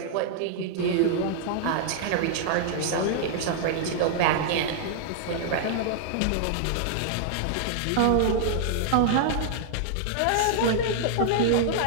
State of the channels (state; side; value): different; both; correlation -0.01